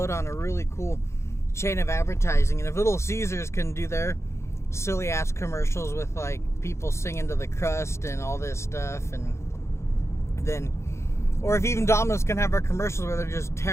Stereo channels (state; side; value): late; right; 0.13 ms